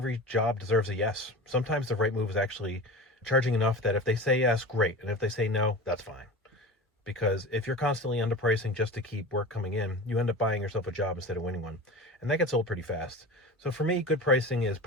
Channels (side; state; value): both; normal; correlation 0.32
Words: job deserves a yes. Sometimes the right move is actually charging enough that if they say yes, great. And if they say no, that's fine. Because if you're constantly underpricing just to keep work coming in, you end up buying yourself a job instead of winning one. And that gets old pretty fast. So for me, good pricing is